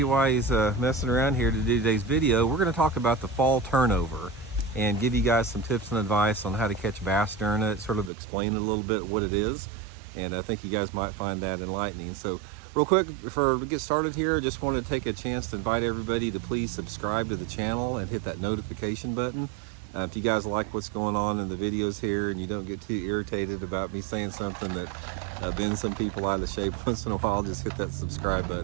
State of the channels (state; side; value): drops out; left; at 8.1 s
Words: while he's messing around here to do today's video. We're gonna talk about the fall turnover and give you guys some tips and advice on how to catch bass during it, sort of explain a little bit what it is. And I think you guys might find that enlightening. So real quick, before we get started here, I just want to take a chance to invite everybody to please subscribe to the channel and hit that notification button. If you guys like what's going on in the videos here and you don't get too irritated about me saying something that bends some people out of shape once in a while, just hit that subscribe